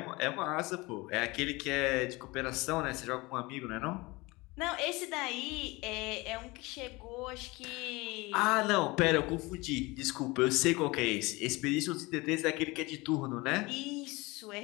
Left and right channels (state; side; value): quieter; right; 23.1 dB